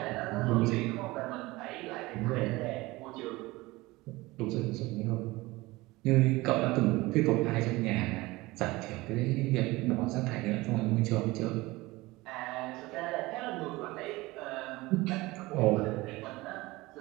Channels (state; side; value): quieter; left; 20.8 dB